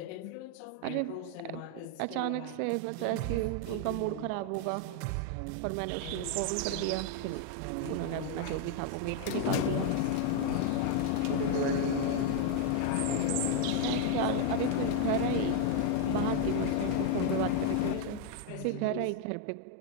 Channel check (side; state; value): both; different; correlation 0.00